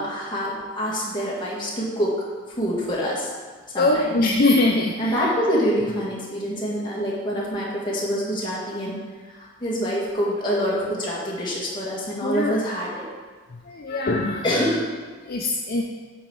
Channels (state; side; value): normal; both; correlation 0.40